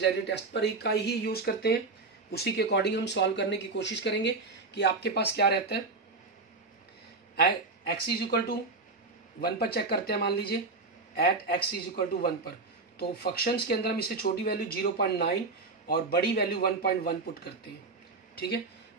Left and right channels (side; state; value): left; quieter; 3.7 dB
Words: टेस्ट पर का ही यूज करते हैं, उसी के अकॉर्डिंग हम सॉल्व करने की कोशिश करेंगे कि आपके पास क्या रहता है। x इज इक्वल टू 1 पर चेक करते हैं, मान लीजिए at x is equal to 1 पर, तो फंक्शंस के अंदर हम इससे छोटी वैल्यू 0.9 और बड़ी वैल्यू 1.1 पुट करते हैं, ठीक है।